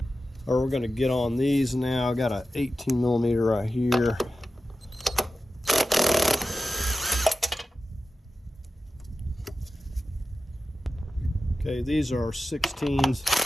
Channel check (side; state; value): both; normal; correlation 0.93